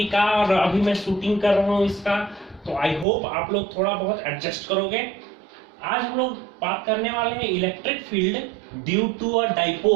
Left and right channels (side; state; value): left; drops out; at 3.1 s